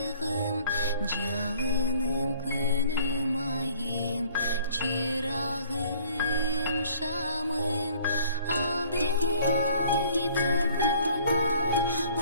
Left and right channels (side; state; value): both; inverted; correlation -0.55